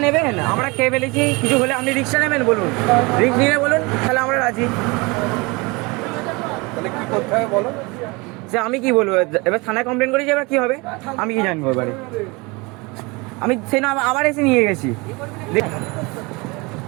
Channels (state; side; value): quieter; left; 25.8 dB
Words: নেবেন? আমরা খেয়ে ফেলেছি, কিছু হলে আপনি রিস্কটা নেবেন বলুন? রিস্ক নিয়ে বলুন, তাহলে আমরা রাজি। তাহলে কি করতে হবে বলো? সে আমি কি বলবো এবার? থানায় কমপ্লেন করেছি, এবার কি হবে আমি কি জানবো? এবারে আমি সেই না আবার এসে নিয়ে গেছি।